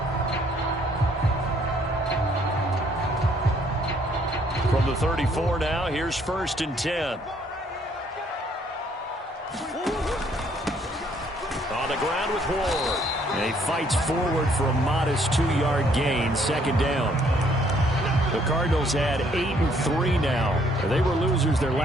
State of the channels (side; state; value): both; normal; correlation 0.65